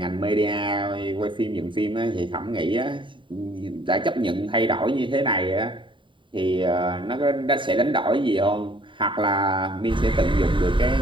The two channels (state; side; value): late; left; 0.24 ms